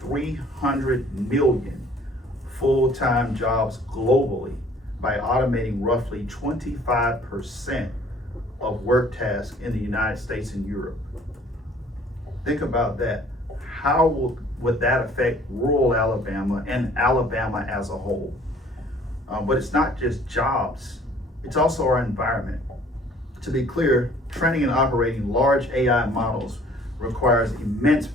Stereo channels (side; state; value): both; normal; correlation 0.55